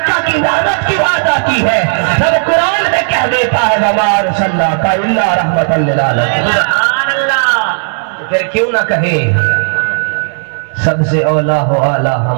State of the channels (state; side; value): silent; left; digital silence